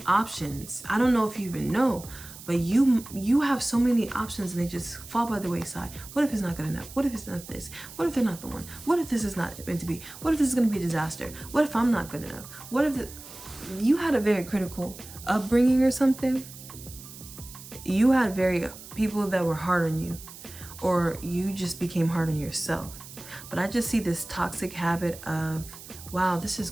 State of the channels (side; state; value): right; noise; hiss, 16 dB below the sound